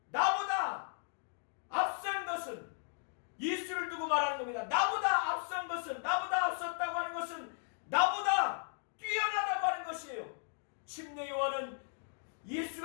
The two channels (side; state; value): right; silent; digital silence